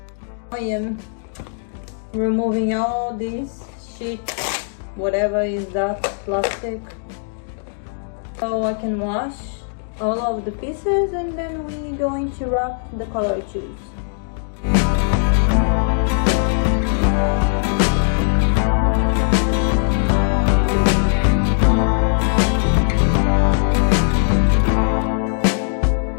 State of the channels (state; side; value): silent; right; digital silence